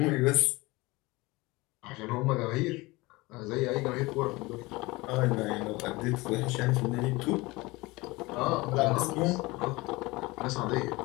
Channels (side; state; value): right; quieter; 22.4 dB